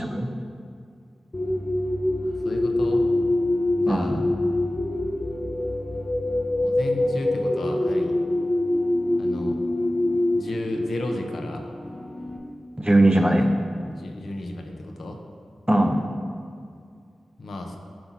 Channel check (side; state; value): both; normal; correlation 0.96